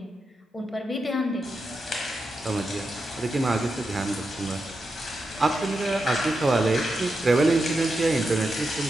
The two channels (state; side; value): normal; both; correlation 0.87